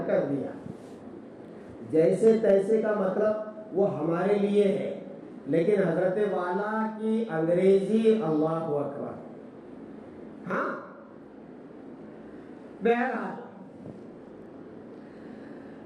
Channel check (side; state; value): both; identical; correlation 1.00